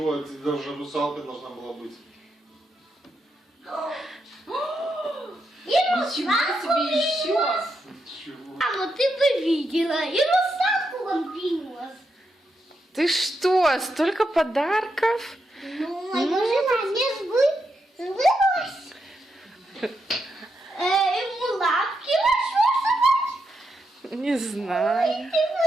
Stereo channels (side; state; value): both; normal; correlation 0.83